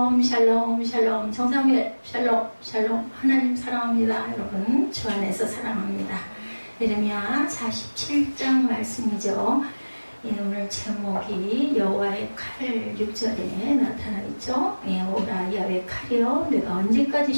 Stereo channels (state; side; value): inverted; both; correlation -1.00